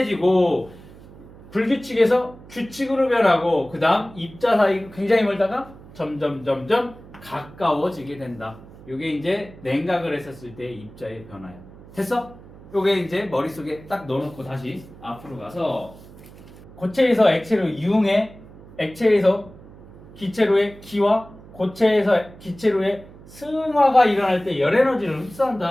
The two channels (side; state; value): right; noise; hum, 20 dB below the sound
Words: 불규칙에서 규칙으로 변하고, 그 다음 입자 사이 굉장히 멀다가 점점 가까워지게 된다. 이게 이제 냉각을 했었을 때의 입자의 변화야. 됐어? 요게 이제 머릿속에 딱 넣어놓고 다시 앞으로 가서 고체에서 액체로 이용해, 액체에서 기체로의 기화, 고체에서 기체로의 승화가 일어날 때 열 에너지를